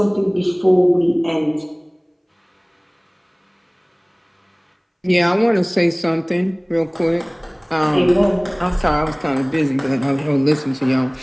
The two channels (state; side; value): identical; both; correlation 1.00